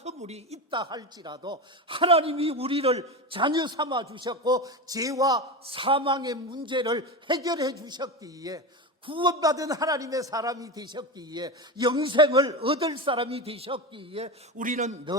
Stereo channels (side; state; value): both; normal; correlation 0.21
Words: 있다 할지라도 하나님이 우리를 자녀 삼아 주셨고 죄와 사망의 문제를 해결해 주셨기에 구원받은 하나님의 사람이 되셨기에 영생을 얻을 사람이 되셨기에 우리는